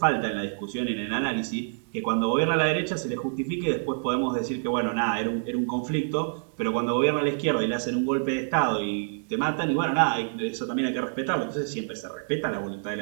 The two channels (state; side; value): silent; left; 60 dB below the other